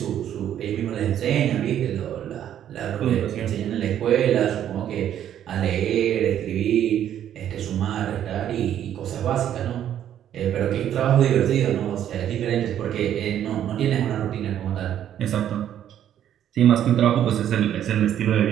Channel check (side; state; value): left; quieter; 10.5 dB